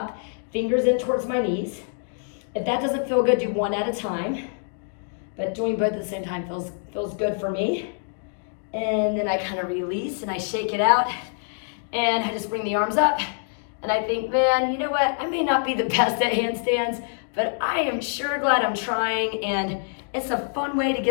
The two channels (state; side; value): silent; right; 62 dB below the other